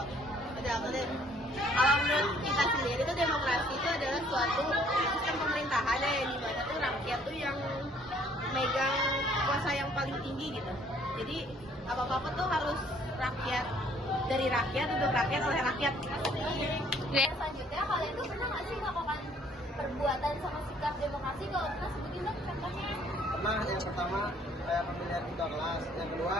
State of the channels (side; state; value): both; normal; correlation 0.61